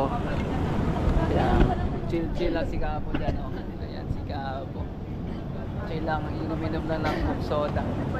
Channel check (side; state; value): both; identical; correlation 1.00